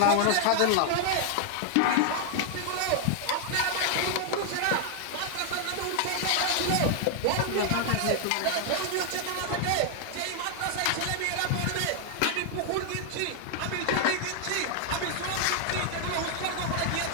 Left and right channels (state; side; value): different; both; correlation 0.00